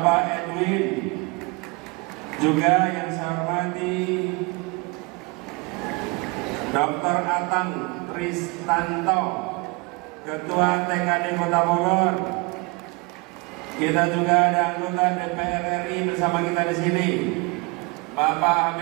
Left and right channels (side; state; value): left; quieter; 27.6 dB